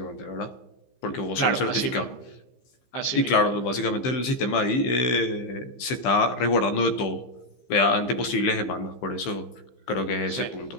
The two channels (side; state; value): right; late; 15 ms